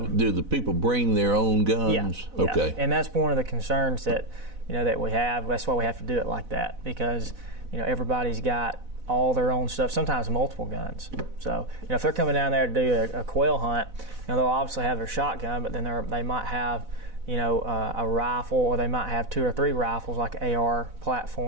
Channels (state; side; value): late; left; 4.0 ms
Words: Do the people bring their own guns? Yeah. Okay. And that's one of the concerns that that we have. That's why we have to do it like that, because everybody's got all their own stuff, sometimes multiple guns. So if they're coming down there to do a quail hunt, they'll obviously have their shotgun, but then they might have a rifle, or they might have 2 or 3 rifles, like an AR